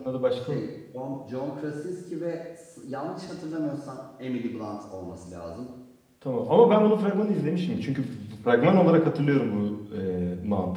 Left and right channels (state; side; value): identical; both; correlation 1.00